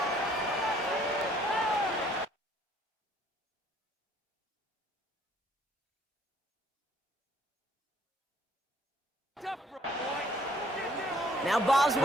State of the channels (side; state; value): both; normal; correlation 0.61